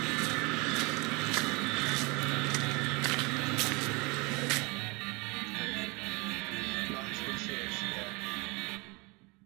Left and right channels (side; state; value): left; quieter; 27.8 dB